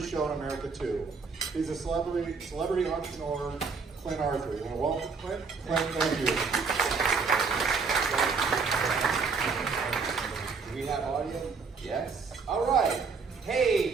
show in America too. He's a celebrity entrepreneur, Clint Arthur. You want to welcome Clint? Clint, thank you. Do we have audio? Yes. All right.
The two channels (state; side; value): quieter; left; 5.0 dB